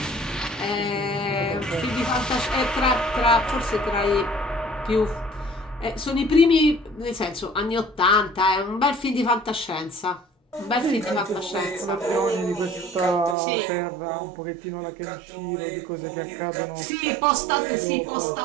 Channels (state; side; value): drops out; left; at 13.4 s